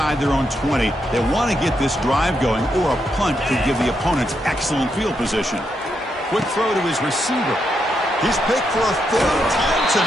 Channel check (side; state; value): both; normal; correlation 0.81